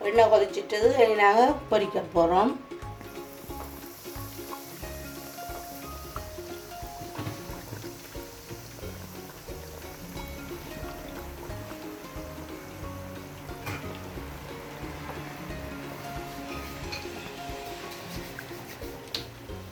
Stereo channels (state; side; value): identical; both; correlation 1.00